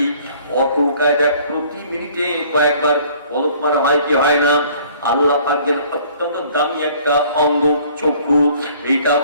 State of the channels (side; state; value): both; inverted; correlation -0.55